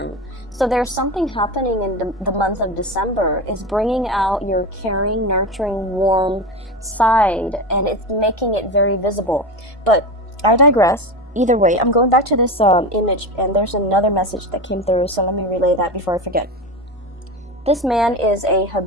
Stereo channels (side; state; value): both; normal; correlation 0.22